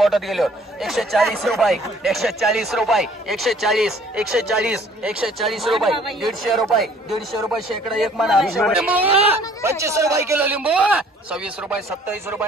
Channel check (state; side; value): normal; both; correlation 0.56